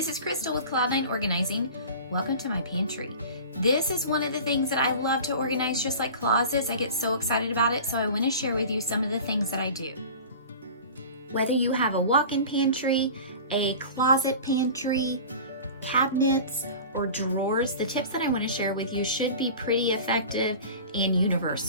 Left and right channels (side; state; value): both; inverted; correlation -0.37